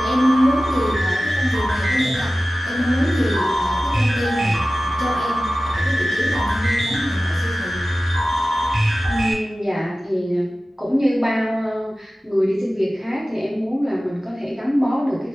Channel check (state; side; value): normal; both; correlation 0.96